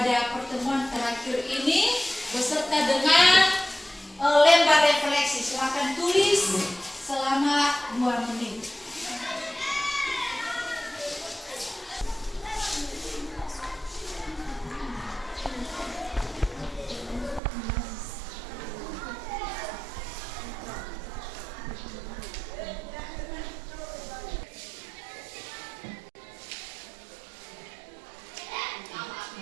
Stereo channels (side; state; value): left; drops out; at 17.4 s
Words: pertemuan terakhir ini beserta dengan lembar refleksi. Silakan tulis selama 2 menit.